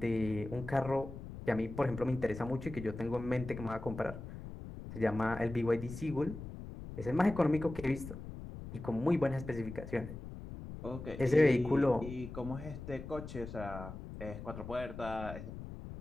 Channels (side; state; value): left; noise; rumble, 10 dB below the sound